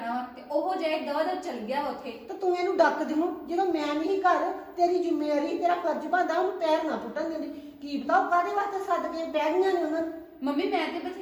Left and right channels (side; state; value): both; identical; correlation 1.00